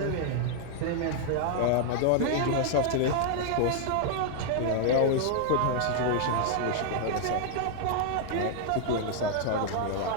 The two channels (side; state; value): both; different; correlation 0.00